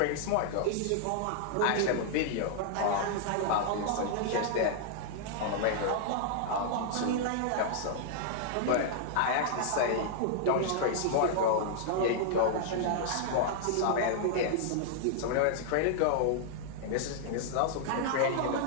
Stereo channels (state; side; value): different; both; correlation -0.01